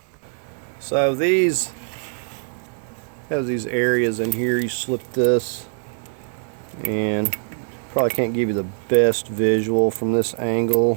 So these have these areas in here. You slip this, and probably can't give you the best visual from this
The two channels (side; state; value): left; silent; digital silence